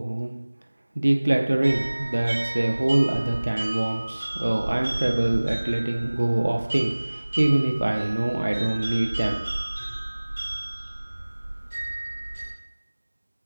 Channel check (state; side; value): inverted; both; correlation -1.00